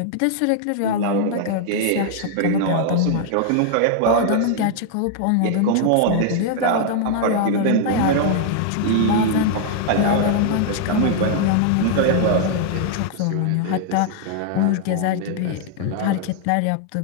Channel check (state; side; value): different; both; correlation 0.00